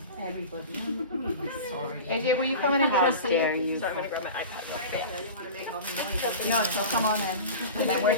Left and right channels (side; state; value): both; inverted; correlation -0.33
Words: Everybody. Sorry. AJ, will you come in and get a seat? Dare you? So I'm gonna grab my iPad. I didn't want to make all the noise. No, so come on in. And then we're